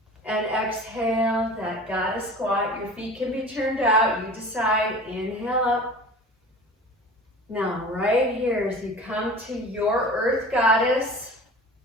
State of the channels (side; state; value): both; normal; correlation 0.39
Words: And exhale, that goddess squat. Your feet can be turned out. You decide. Inhale up. Now, right here, as you come to your earth goddess,